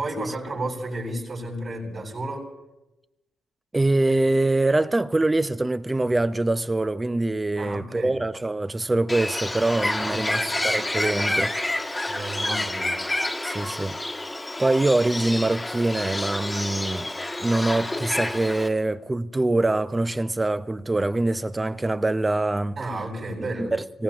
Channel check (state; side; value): normal; both; correlation 0.98